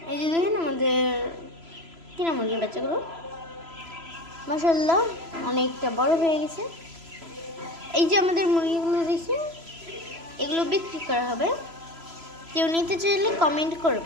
এই যে দেখেন আমাদের কিনা মুরগির বাচ্চাগুলো মাশাআল্লাহ অনেকটা বড় হয়ে গেছে। এই যে আমাদের মুরগিগুলো দেখি এগুলো বিক্রি করা হবে। কেউ নিতে চাইলে কমেন্ট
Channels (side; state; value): left; late; 3.0 ms